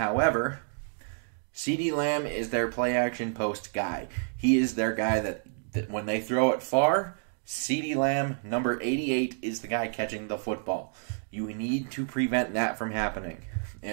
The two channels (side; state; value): left; silent; digital silence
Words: CeeDee Lamb is their play action post guy. He is their guy that when they throw it far, CeeDee Lamb, number 88, is the guy catching the football. You need to prevent that from happening.